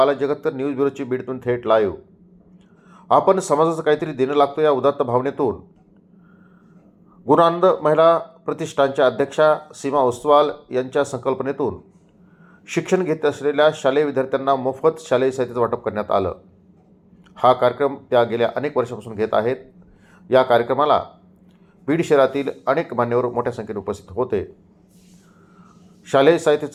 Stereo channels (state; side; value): identical; both; correlation 1.00